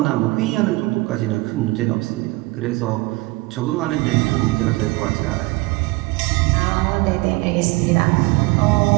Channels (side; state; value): left; quieter; 22.6 dB